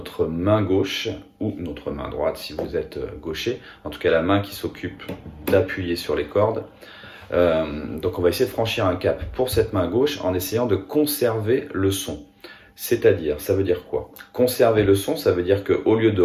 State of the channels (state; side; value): identical; both; correlation 1.00